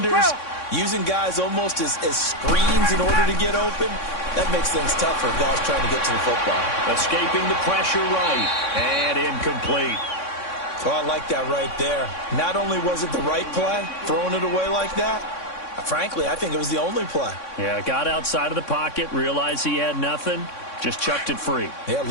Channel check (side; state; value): right; late; 3.6 ms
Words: using guys almost as screens in order to get open, that makes things tough for guys trying to get to the football. Escaping the pressure right, and incomplete. Oh, I like that right there. Not only was it the right play, throwing it away like that, frankly, I think it was the only play. Yeah, got outside of the pocket, realized he had nothing, just chucked it free. Yeah,